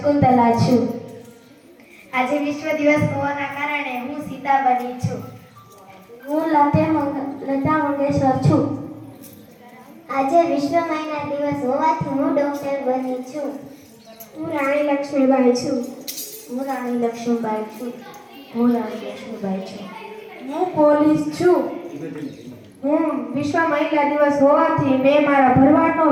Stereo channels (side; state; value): both; identical; correlation 1.00